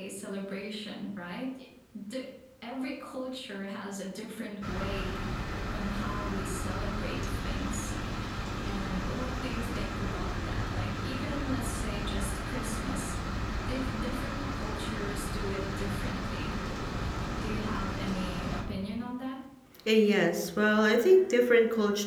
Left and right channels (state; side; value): identical; both; correlation 1.00